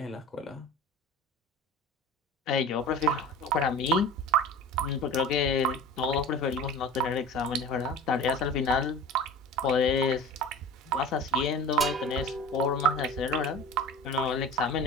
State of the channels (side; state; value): both; normal; correlation 0.36